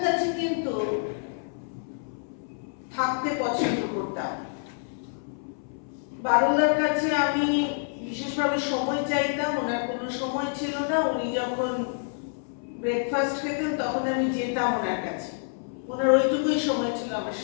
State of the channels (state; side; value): silent; right; 60 dB below the other